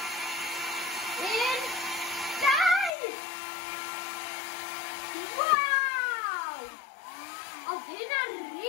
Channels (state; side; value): drops out; right; at 2.9 s